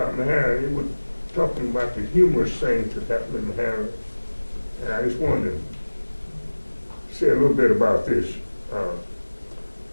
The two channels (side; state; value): both; inverted; correlation -1.00